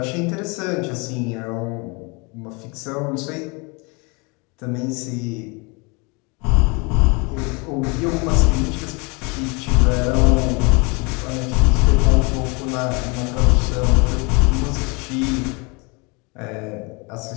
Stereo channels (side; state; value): right; quieter; 29.5 dB